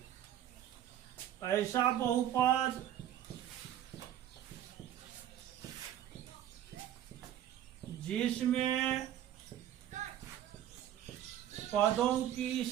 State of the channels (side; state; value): left; quieter; 11.5 dB